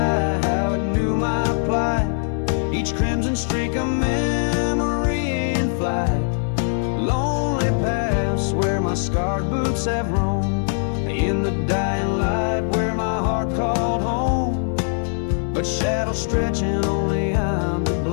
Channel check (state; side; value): silent; right; digital silence